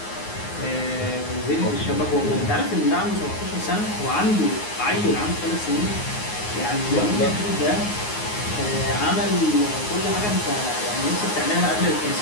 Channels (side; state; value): right; late; 9.6 ms